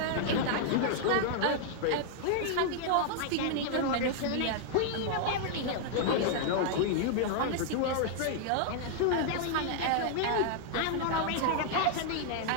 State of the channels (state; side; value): different; both; correlation -0.01